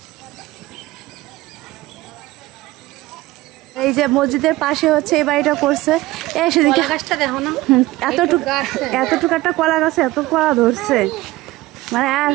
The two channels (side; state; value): left; quieter; 18.6 dB